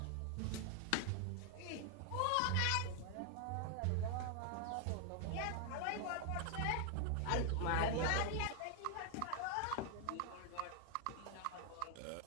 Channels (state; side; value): different; both; correlation 0.00